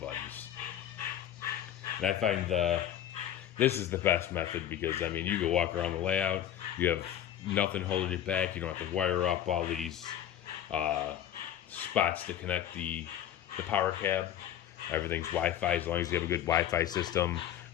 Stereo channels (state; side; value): quieter; right; 10.8 dB